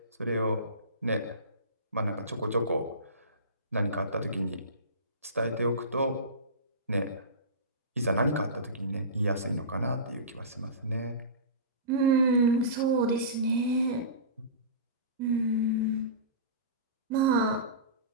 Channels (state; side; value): inverted; both; correlation -0.30